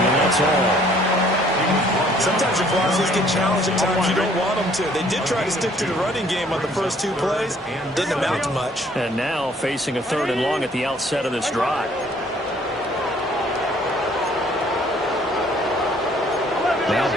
that's all. Sometimes your philosophies get challenged at times you don't want them to. They did try to stick to the running game on the first 2 plays. Didn't amount to much. And now facing a 3rd and long at the outset of this drive. Now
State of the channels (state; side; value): normal; both; correlation 0.59